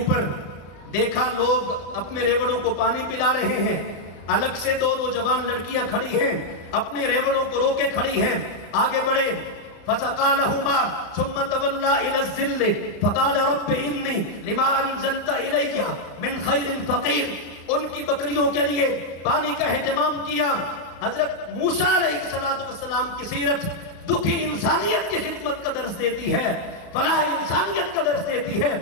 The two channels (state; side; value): late; right; 35 ms